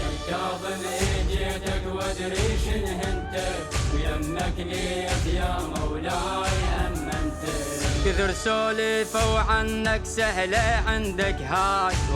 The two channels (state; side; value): identical; both; correlation 1.00